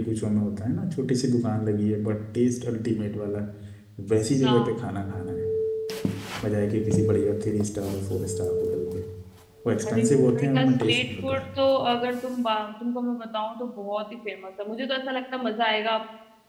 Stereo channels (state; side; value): identical; both; correlation 1.00